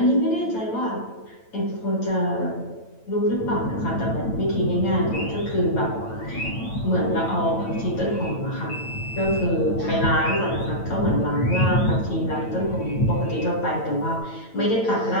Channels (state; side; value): late; right; 9.0 ms